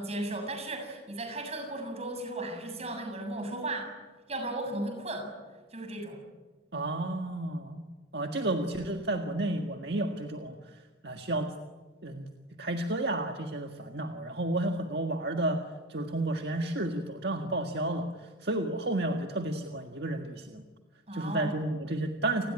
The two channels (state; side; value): normal; both; correlation 0.26